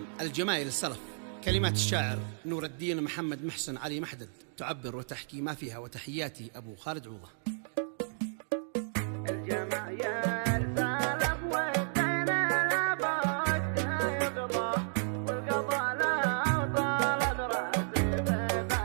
الجمايل السلف، كلمات الشاعر نور الدين محمد محسن علي محدد، تعبر وتحكي ما فيها. وتحياتي أبو خالد عوضة.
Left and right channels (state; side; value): silent; left; digital silence